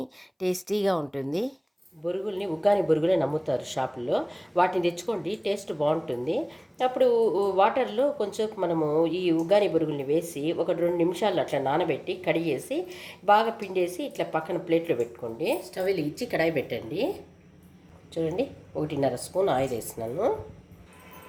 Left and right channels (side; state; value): both; identical; correlation 1.00